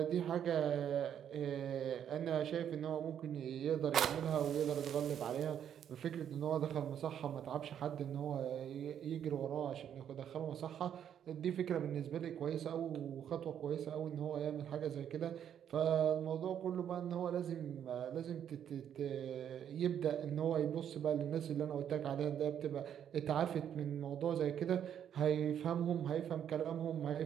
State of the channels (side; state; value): left; quieter; 9.3 dB